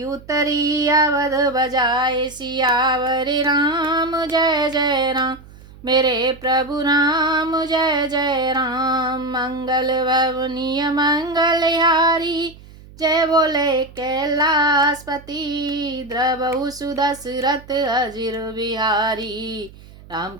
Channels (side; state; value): right; noise; hum, 21 dB below the sound